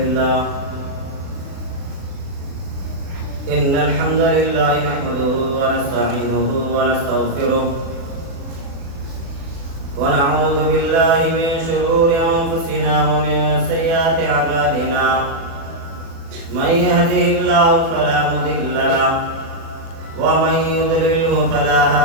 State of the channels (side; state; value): left; late; 36 ms